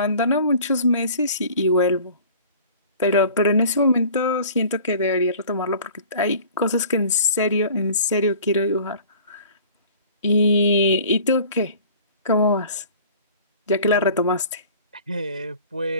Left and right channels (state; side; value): inverted; both; correlation -0.47